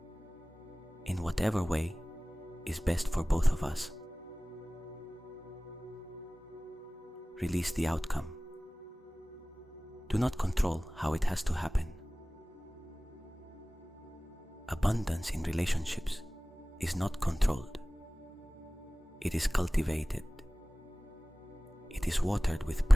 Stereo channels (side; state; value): both; normal; correlation 0.98